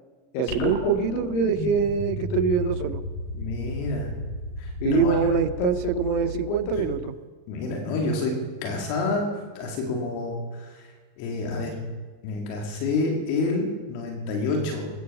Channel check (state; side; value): late; right; 39 ms